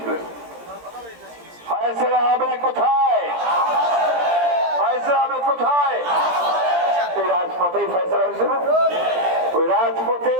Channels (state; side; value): late; left; 17 ms